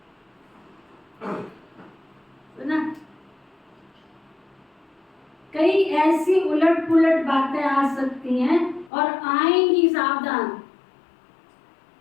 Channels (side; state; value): right; drops out; at 8.9 s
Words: सुना? कई ऐसी उलट पुलट बातें आ सकती हैं और आएंगी, सावधान।